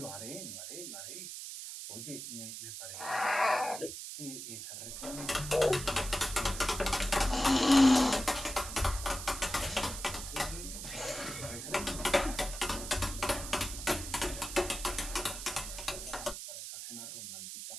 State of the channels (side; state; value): right; noise; hiss, 8 dB below the sound